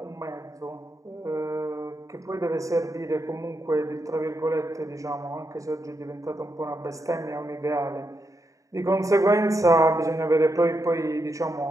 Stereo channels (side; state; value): left; late; 0.16 ms